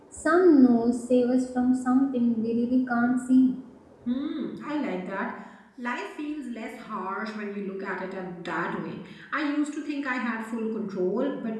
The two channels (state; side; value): identical; both; correlation 1.00